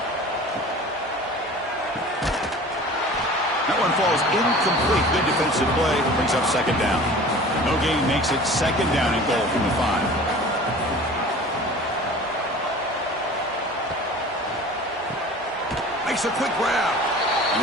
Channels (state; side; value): normal; both; correlation 0.42